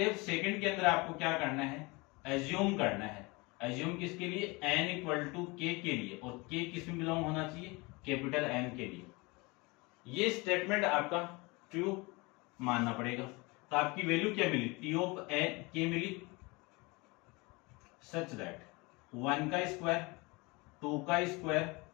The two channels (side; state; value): right; quieter; 25.8 dB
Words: सेकंड के अंदर आपको क्या करना है, एज्यूम करना है। एज्यूम किसके लिए, n इक्वल टू k के लिए, और k किस में बिलोंग होना चाहिए, कैपिटल N के लिए। ये स्टेटमेंट आपका ट्रू मानना पड़ेगा। तो आपकी वैल्यू क्या मिली, T ऑफ k मिली, सच दैट 1 का स्क्वायर 2 का स्क्वायर